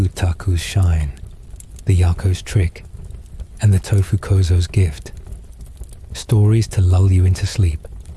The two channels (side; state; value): both; identical; correlation 1.00